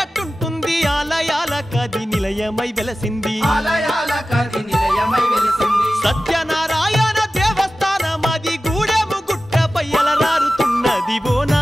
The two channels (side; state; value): both; normal; correlation 0.95